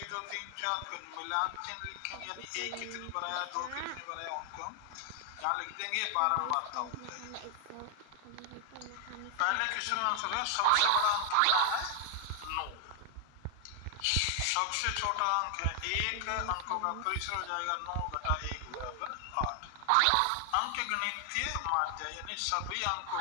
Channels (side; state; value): both; different; correlation 0.00